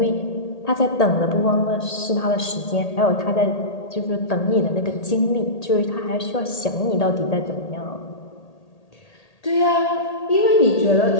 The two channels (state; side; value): late; right; 1.8 ms